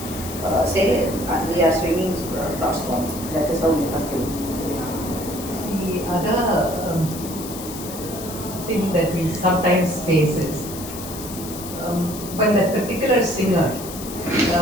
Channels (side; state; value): left; noise; hiss, 11 dB below the sound